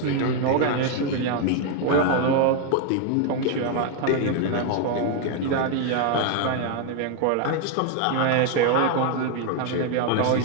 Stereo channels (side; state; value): both; different; correlation 0.01